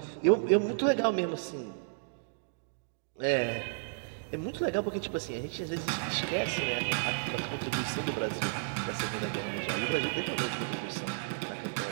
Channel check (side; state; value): left; silent; digital silence